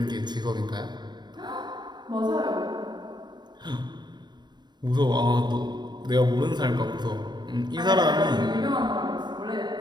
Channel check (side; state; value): left; late; 0.21 ms